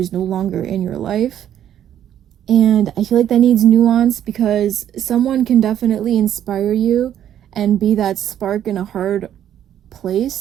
no longer in your life. And I feel like that needs nuance, because someone can definitely inspire you and be that spark in a hard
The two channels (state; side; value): quieter; left; 10.6 dB